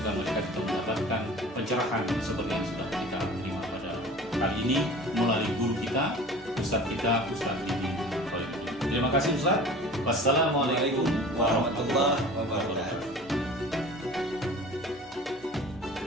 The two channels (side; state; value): both; normal; correlation 0.41